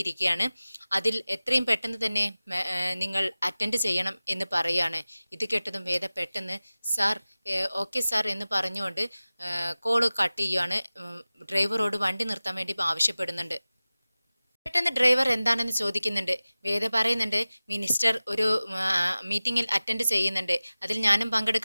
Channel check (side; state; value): both; inverted; correlation -0.97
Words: അതിൽ എത്രയും പെട്ടെന്ന് തന്നെ നിങ്ങൾ അറ്റൻഡ് ചെയ്യണം എന്ന് പറയുകയാണ്. ഇത് കേട്ടതും വേദ പെട്ടെന്ന് സാർ ഓക്കെ സാർ എന്ന് പറഞ്ഞുകൊണ്ട് കോള് കട്ട് ചെയ്യുകയാണ്. ഡ്രൈവറോട് വണ്ടി നിർത്താൻ വേണ്ടി ആവശ്യപ്പെടുന്നുണ്ട്. പെട്ടെന്ന് ഡ്രൈവർ എന്താണെന്ന് ചോദിക്കുന്നുണ്ട്. വേദ പറയുന്നുണ്ട്, മിനിസ്റ്റർ ഒരു മീറ്റിംഗിൽ അറ്റൻഡ് ചെയ്യുന്നുണ്ട്, അതിൽ ഞാനും